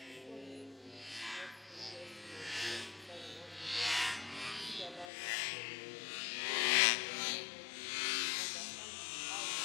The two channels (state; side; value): drops out; right; at 5.1 s